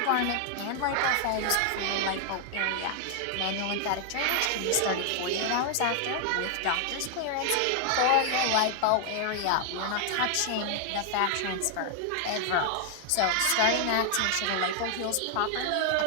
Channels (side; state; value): both; different; correlation 0.00